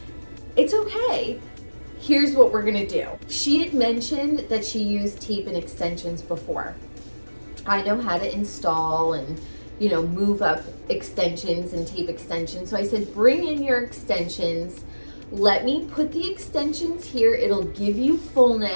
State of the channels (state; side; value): inverted; both; correlation -1.00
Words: it's okay. Here's what we're gonna do. She had mentioned that she used tape and extensions before. I know how to install and, you know, move up extensions and tape extensions. So I said, bring in your extensions. Let me put the extensions here. It'll give you